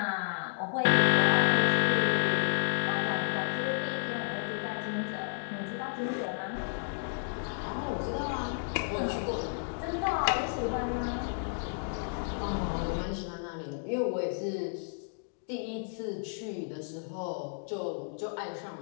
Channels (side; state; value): right; silent; digital silence